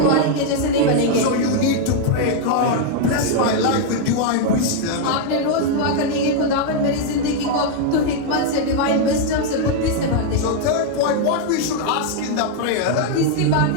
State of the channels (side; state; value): both; different; correlation 0.00